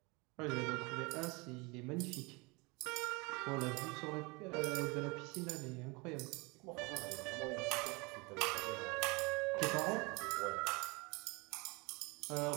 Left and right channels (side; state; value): left; quieter; 26.9 dB